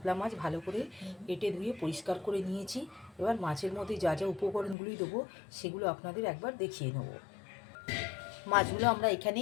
মাছ ভালো করে কেটে ধুয়ে পরিষ্কার করে নিয়েছি। এবার মাছের মধ্যে যা যা উপকরণগুলি দেবো সেগুলো আপনাদের একবার দেখিয়ে নেব। মাছগুলো আমরা এখানে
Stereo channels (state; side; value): drops out; right; at 4.8 s